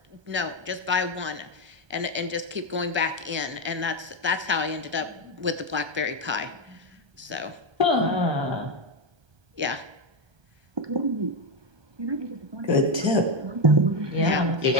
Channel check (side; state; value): left; late; 1.3 ms